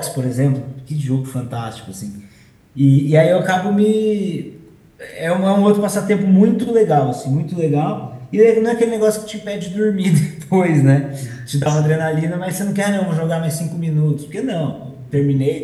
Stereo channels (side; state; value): both; identical; correlation 1.00